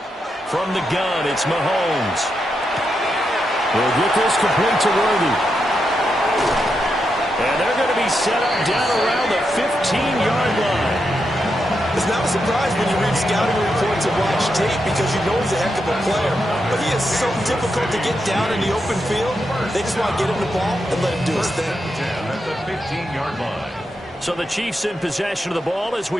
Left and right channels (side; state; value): both; normal; correlation 0.84